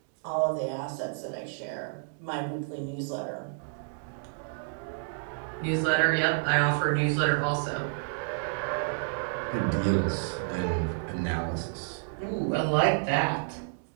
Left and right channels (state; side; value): silent; left; digital silence